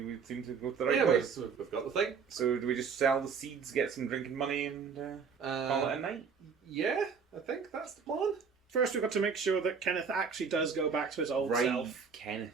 seem to go to the right place. We've got the thing. So do we just sell the seeds, get some drinking money, and call it a night? Yeah, I think that's the plan. First, we've got to make sure that Kenneth actually does go back to his old self.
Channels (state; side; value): quieter; left; 5.8 dB